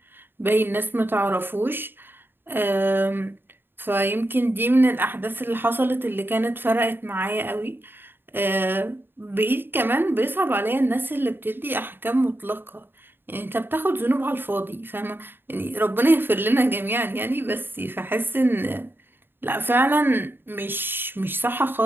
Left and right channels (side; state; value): left; late; 0.099 ms